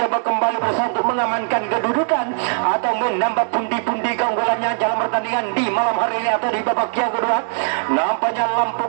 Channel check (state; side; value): silent; left; 66 dB below the other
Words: kembali berusaha untuk mengamankan kedudukan atau menambah pundi-pundi keunggulannya dalam pertandingan di malam hari ini atau di babak yang kedua. Nampaknya lampu